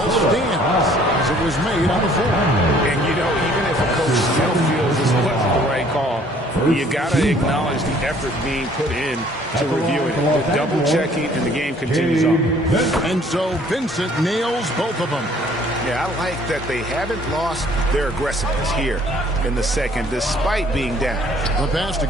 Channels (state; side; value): normal; both; correlation 0.58